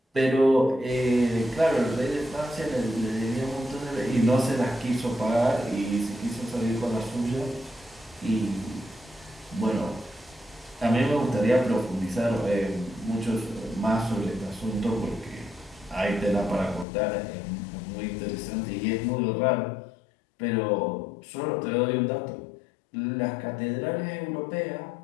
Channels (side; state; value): right; drops out; at 16.9 s